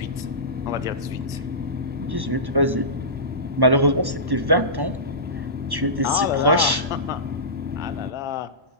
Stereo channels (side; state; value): left; late; 1.1 ms